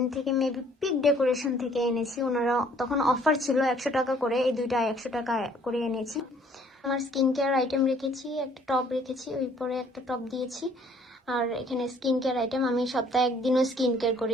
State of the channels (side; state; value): both; normal; correlation 0.59